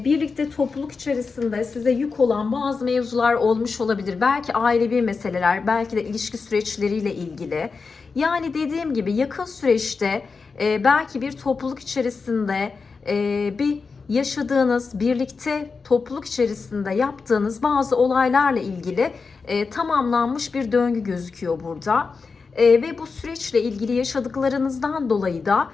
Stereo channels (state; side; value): quieter; right; 4.7 dB